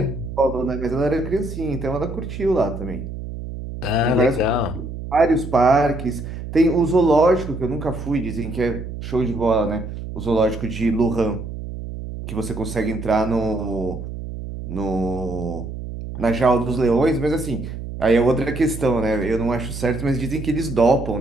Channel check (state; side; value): noise; right; hum, 8 dB below the sound